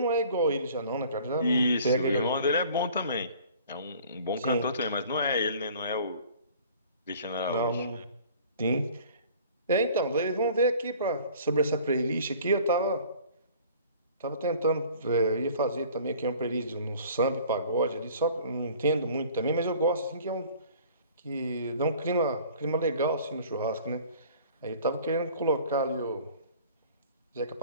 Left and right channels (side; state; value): both; inverted; correlation -0.49